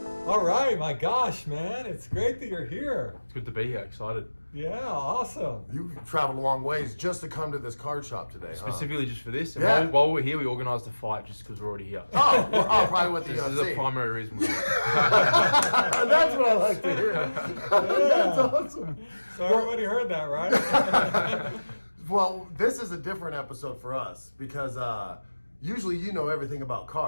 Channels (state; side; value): inverted; both; correlation -1.00